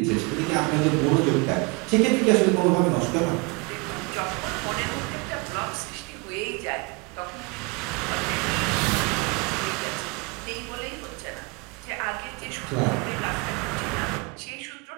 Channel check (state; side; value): quieter; left; 29.8 dB